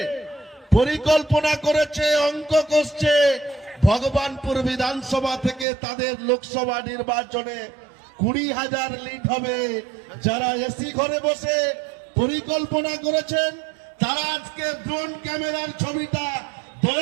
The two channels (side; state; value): left; drops out; at 5.7 s